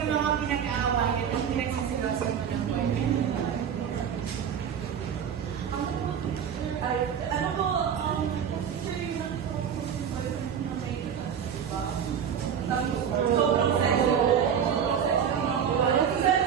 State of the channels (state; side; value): quieter; left; 8.1 dB